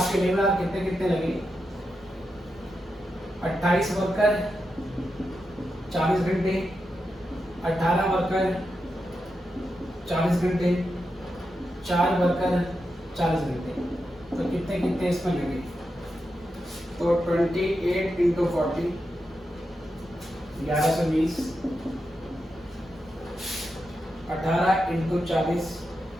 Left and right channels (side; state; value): both; normal; correlation 0.87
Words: लेबर आवर कितने कितने लगे? 28 वर्कर 40 घंटे, 18 वर्कर 40 घंटे, 4 वर्कर 40 घंटे, तो कितने कितने इसमें लगे? तो 28 इंटू 40 1120, 18 इंटू 40